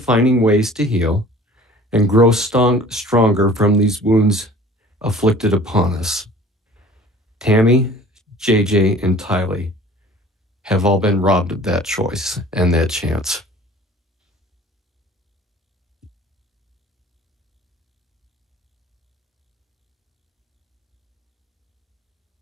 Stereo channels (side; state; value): both; normal; correlation 0.47